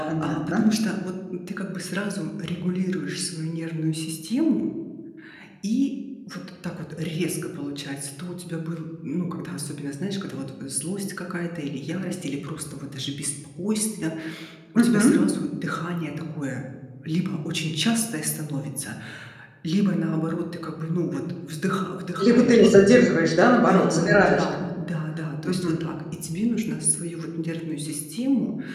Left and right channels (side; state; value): both; identical; correlation 1.00